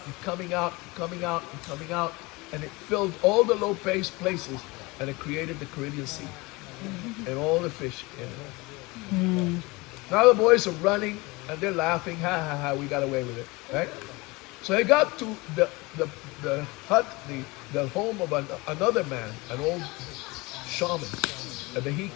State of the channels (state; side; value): quieter; right; 23.9 dB